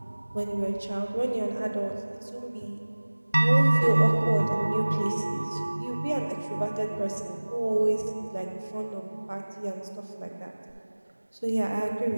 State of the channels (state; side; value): inverted; both; correlation -1.00